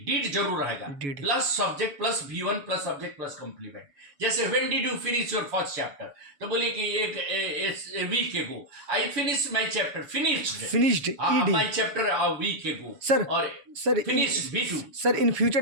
जरूर रहेगा. Plus subject plus V1 plus subject plus complement. जैसे when did you finish your first chapter? तो बोलिए कि एक week ago I finished my chapter. Finished my chapter a week ago. Sir finished V2. Sir in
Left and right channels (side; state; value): left; late; 7.1 ms